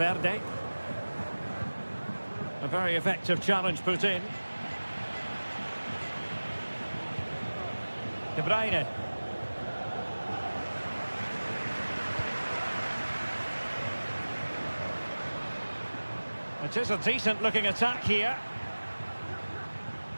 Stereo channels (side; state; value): both; inverted; correlation -1.00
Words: A very effective challenge put in. De Bruyne. It is a decent looking attack here.